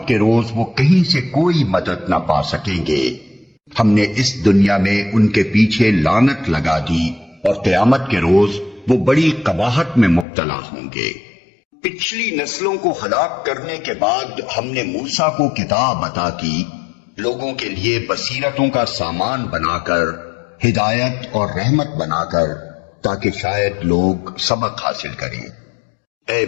کے روز وہ کہیں سے کوئی مدد نہ پا سکیں گے۔ ہم نے اس دنیا میں ان کے پیچھے لعنت لگا دی، اور قیامت کے روز وہ بڑی قباحت میں مبتلا ہوں گے۔ پچھلی نسلوں کو ہلاک کرنے کے بعد ہم نے موسیٰ کو کتاب عطا کی، لوگوں کے لیے بصیرتوں کا سامان بنا کر، ہدایت اور رحمت بنا کر، تاکہ شاید لوگ سبق حاصل کریں۔ اے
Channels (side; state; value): right; drops out; at 10.2 s